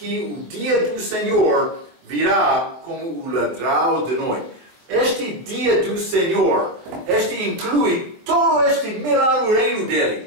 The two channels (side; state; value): left; late; 23 ms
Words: o dia do Senhor virá como o ladrão de noite. Este dia do Senhor, inclui todo este milagre reino